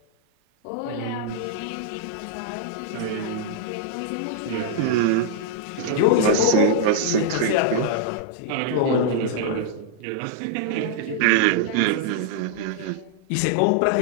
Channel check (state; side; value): different; both; correlation -0.01